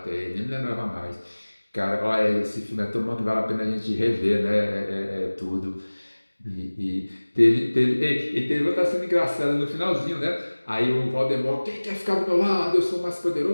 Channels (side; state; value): both; inverted; correlation -1.00